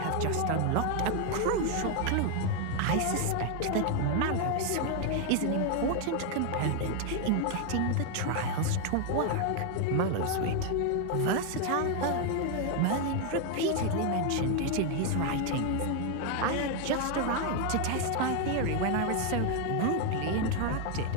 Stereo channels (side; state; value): both; different; correlation 0.01